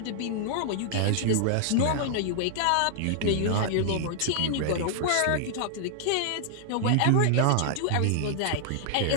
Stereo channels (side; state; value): both; different; correlation -0.01